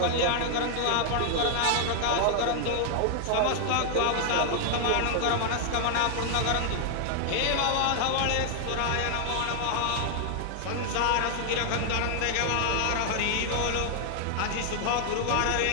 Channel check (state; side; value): different; both; correlation 0.00